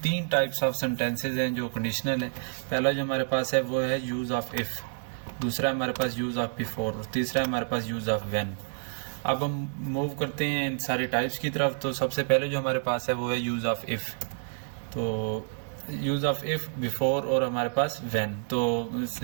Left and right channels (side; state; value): left; silent; digital silence